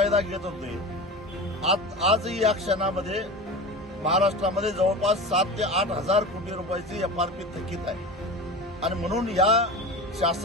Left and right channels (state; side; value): normal; both; correlation 0.31